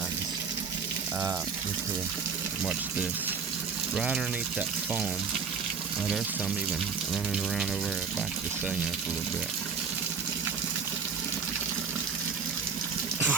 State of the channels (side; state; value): left; quieter; 5.9 dB